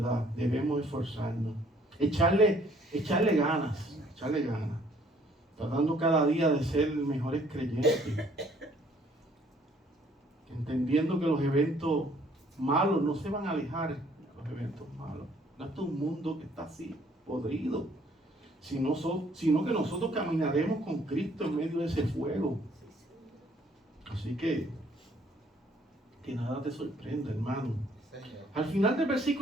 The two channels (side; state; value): both; normal; correlation 0.62